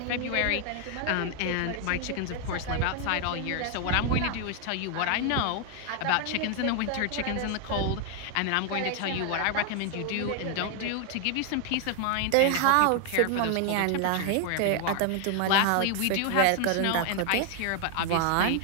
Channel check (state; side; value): different; both; correlation 0.00